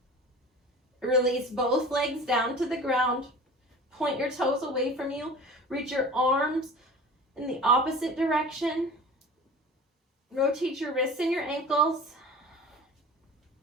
Release both legs down to the ground. Point your toes away from you. Reach your arms in the opposite direction. Rotate your wrists and your ankles.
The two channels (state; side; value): normal; both; correlation 0.39